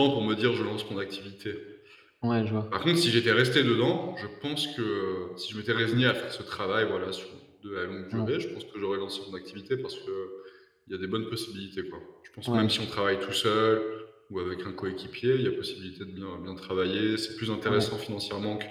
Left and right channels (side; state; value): both; identical; correlation 1.00